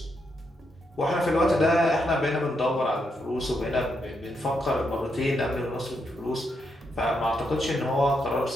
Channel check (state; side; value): normal; both; correlation 0.81